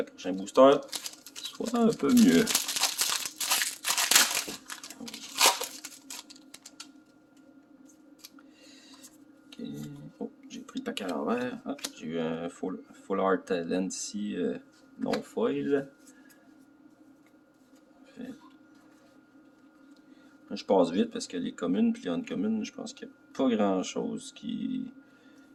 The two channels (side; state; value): both; identical; correlation 1.00